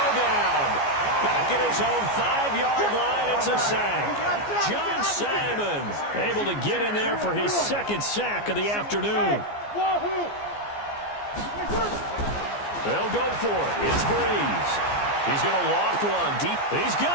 down. Back at his own 5-yard line, it's a sack. John Simon able to get in there for his second sack of the afternoon. They'll go for it. It's Breeze. He's going to loft one deep. He's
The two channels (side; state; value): right; late; 14 ms